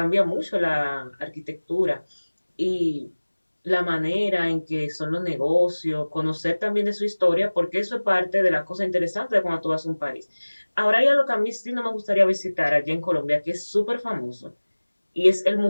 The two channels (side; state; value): both; inverted; correlation -1.00